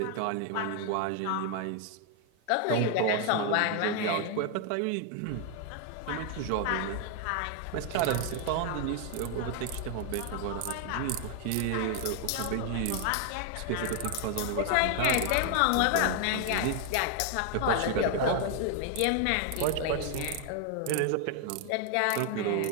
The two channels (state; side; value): different; both; correlation 0.00